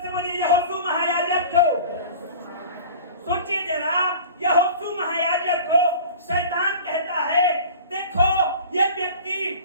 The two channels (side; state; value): both; inverted; correlation -0.41